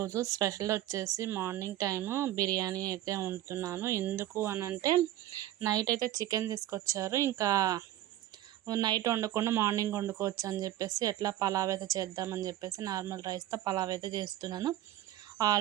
స్పెషల్ వచ్చేసి మార్నింగ్ టైము బిర్యానీ అయితే వండుతున్నాను. ఎందుకు అనంటే నైట్ అయితే చికెన్ తీసుకొచ్చారు. ఇంకా నైట్ వండకుండా మార్నింగ్ వండుకోవచ్చు అని చెప్పేసి ఎట్లా పలావ్ అయితే చేద్దామని చెప్పేసి నార్మల్ రైస్తో పలావ్ అయితే చేస్తున్నాను.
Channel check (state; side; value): quieter; left; 13.7 dB